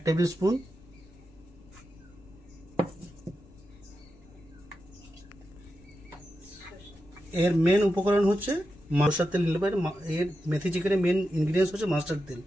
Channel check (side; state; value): left; noise; rumble, 24 dB below the sound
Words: টেবিল স্পুন, এর মেন উপকরণ হচ্ছে মাস্টার্ড তেল নিলে পারে। এর মেথি চিকেনের মেন ইনগ্রিডিয়েন্টস হচ্ছে মাস্টার্ড তেল,